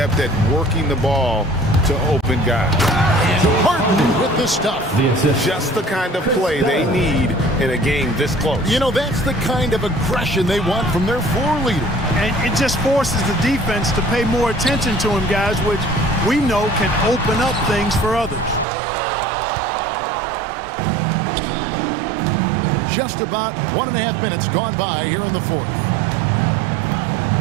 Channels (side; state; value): left; drops out; at 18.7 s